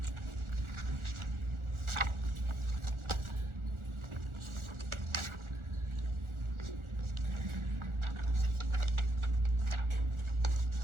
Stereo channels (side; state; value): left; late; 1.4 ms